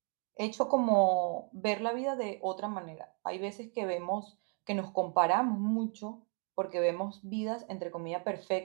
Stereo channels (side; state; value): left; quieter; 39.8 dB